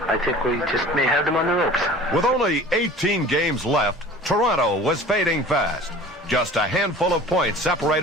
think we just may have them on the ropes. With only 18 games left, Toronto was fading fast. Just a handful of points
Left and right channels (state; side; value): normal; both; correlation 0.43